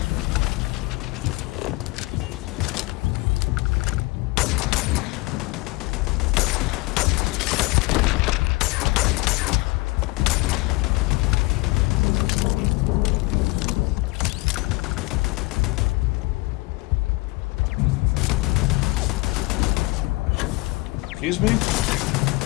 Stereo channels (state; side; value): quieter; right; 23.8 dB